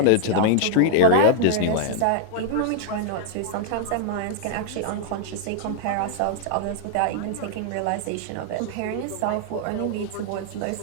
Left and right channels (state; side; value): different; both; correlation -0.01